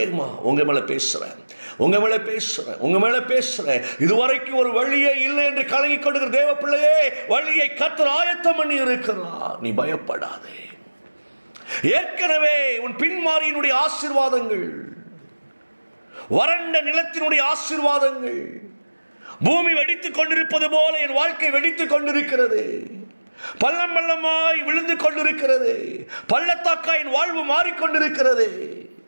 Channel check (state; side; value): inverted; both; correlation -1.00